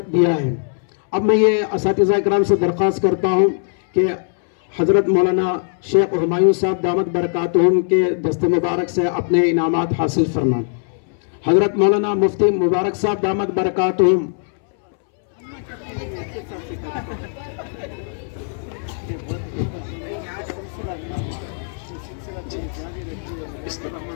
दिया है। अब मैं ये असातिज़ा इकराम से दरख्वास्त करता हूँ कि हज़रत मौलाना शेख हुमायूं साहब दामत बरकातुहुम के दस्ते मुबारक से अपने इनामात हासिल फरमाएं। हज़रत मौलाना मुफ्ती मुबारक साहब दामत बरकातुहुम।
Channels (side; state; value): right; silent; 65 dB below the other